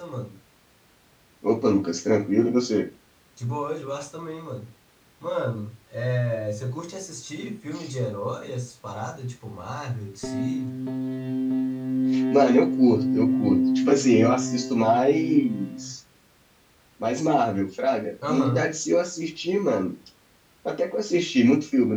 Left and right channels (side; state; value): both; identical; correlation 1.00